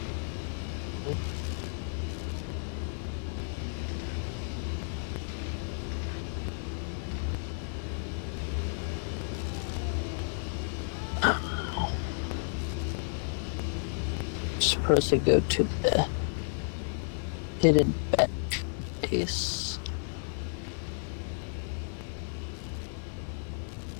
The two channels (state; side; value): silent; right; digital silence